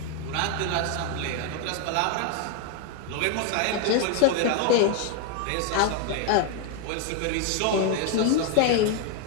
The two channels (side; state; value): both; different; correlation 0.01